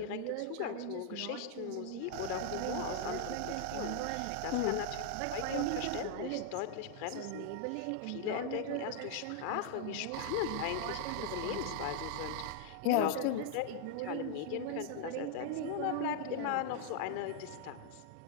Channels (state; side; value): different; both; correlation 0.00